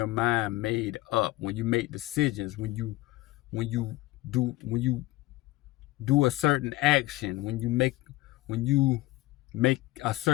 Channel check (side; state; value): right; quieter; 18.7 dB